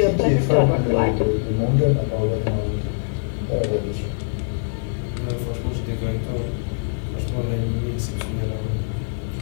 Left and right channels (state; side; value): silent; right; 63 dB below the other